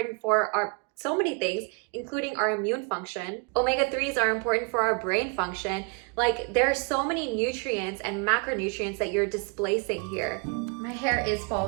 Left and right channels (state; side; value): quieter; left; 33.9 dB